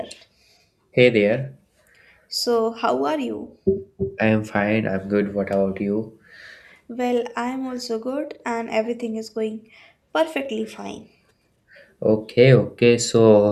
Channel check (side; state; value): both; identical; correlation 1.00